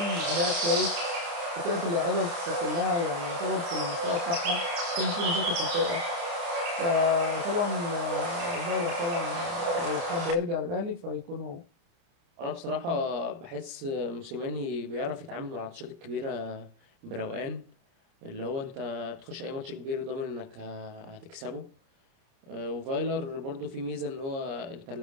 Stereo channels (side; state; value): left; late; 30 ms